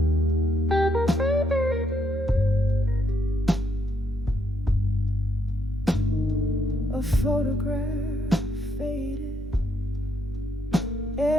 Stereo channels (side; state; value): both; normal; correlation 0.76